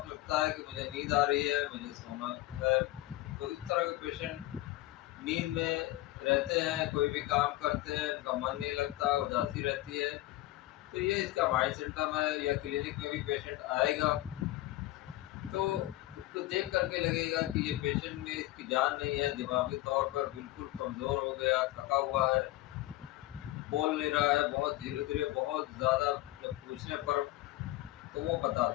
लगता है कि मुझे नींद आ रही है, मुझे सोना है। तो इस तरह के पेशेंट नींद में रहते हैं, कोई भी काम करते हैं उनका मन नहीं लगता, उदासी रहती है। तो ये इसका माइल्ड सिम्टम है। या क्लिनिक में भी पेशेंट आएगा तो उसको देख करके लगेगा कि ये पेशेंट में इसकी जान नहीं है, दिमागी तौर पर बिल्कुल कमज़ोर हो गया, थका हुआ है, बोल नहीं रहा है, बहुत धीरे धीरे, बहुत ज़्यादा। जब पूछने पर तो वो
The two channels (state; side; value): quieter; right; 17.1 dB